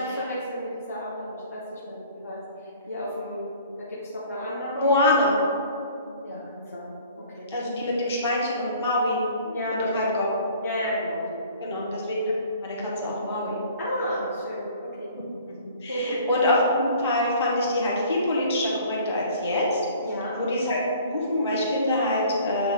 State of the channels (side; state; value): both; inverted; correlation -0.51